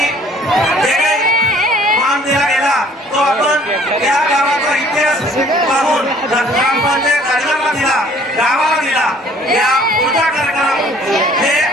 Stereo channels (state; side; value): normal; both; correlation 0.56